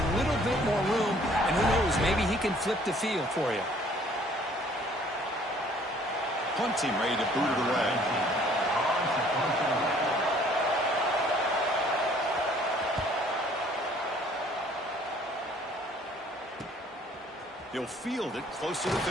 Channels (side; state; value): both; normal; correlation 0.58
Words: little bit more room. And who knows, maybe he can flip the field for you. Punt team ready to boot it away. He'll field it close to the